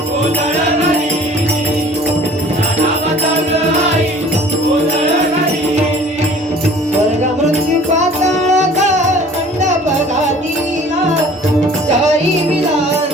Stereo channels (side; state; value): both; normal; correlation 0.49